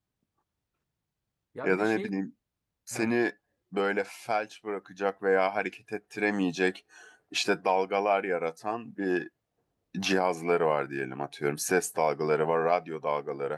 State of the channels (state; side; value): identical; both; correlation 1.00